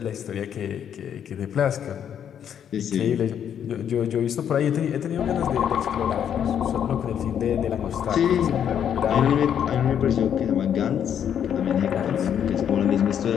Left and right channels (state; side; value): quieter; right; 8.9 dB